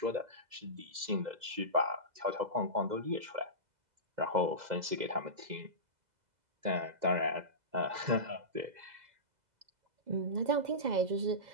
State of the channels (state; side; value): late; left; 2.0 ms